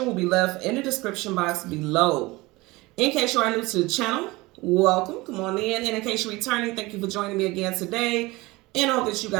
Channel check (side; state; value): left; quieter; 21.7 dB